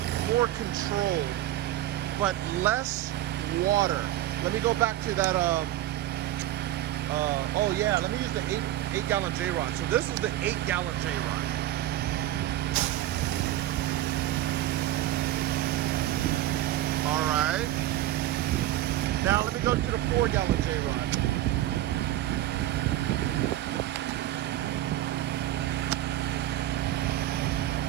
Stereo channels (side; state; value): left; quieter; 13.8 dB